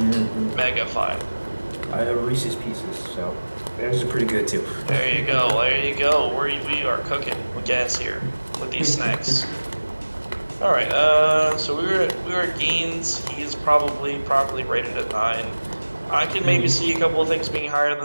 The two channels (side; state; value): both; inverted; correlation -1.00